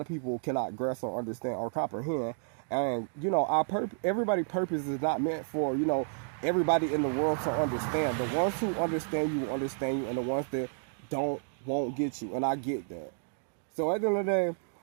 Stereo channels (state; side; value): silent; left; digital silence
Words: people cannot grasp or understand or comprehend. And everybody purpose is not meant for everybody in the world to understand. The ones who understand you will understand you, and the ones that don't won't get you, and I get that. So at the end of the day,